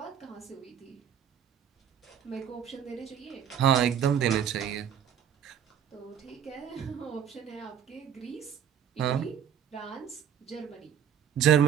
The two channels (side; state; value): left; quieter; 8.7 dB